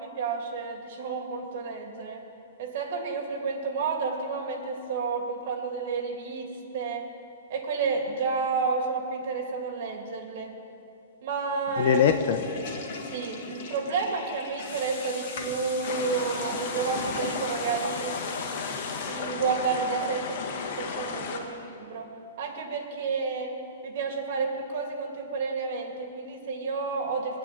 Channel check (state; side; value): inverted; both; correlation -0.32